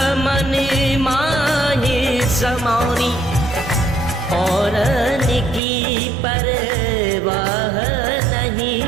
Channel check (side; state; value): left; drops out; at 5.6 s